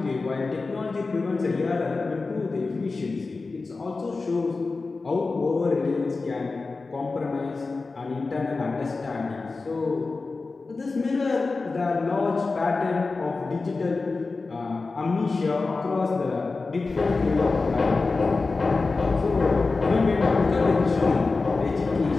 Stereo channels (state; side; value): quieter; right; 3.9 dB